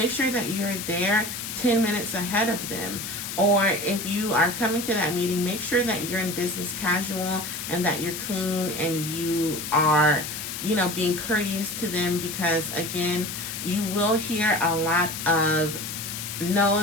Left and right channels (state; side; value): noise; left; hiss, 6 dB below the sound